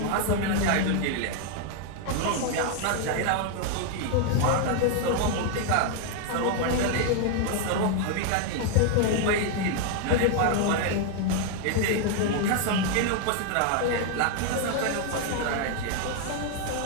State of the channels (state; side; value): different; both; correlation 0.00